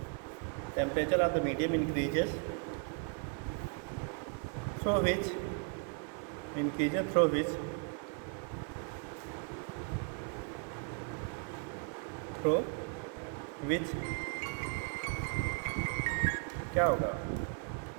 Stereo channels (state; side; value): quieter; left; 38.4 dB